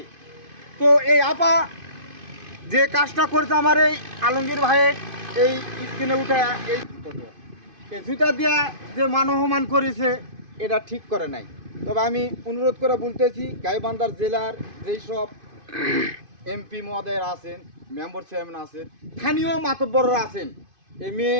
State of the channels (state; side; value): late; left; 2.5 ms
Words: তো এই আপা যে কাজটা করেছে আমার এই আলমগীর ভাইয়ের এই স্ক্রিনে উঠে এই জুতা দিয়া যে মানবমান করেছে এটা ঠিক করে নাই তবে আমি অনুরোধ করে বলতেছি গাইবান্ধার জেলার যেই সব এমপি মহোদয়ের আছেন মেম্বার চেয়ারম্যান আছেন স্থানীয় মাতব্বররা আছেন এই